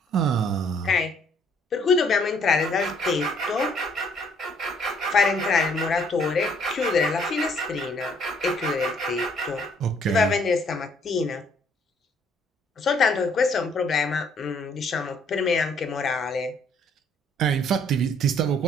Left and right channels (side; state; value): both; normal; correlation 0.64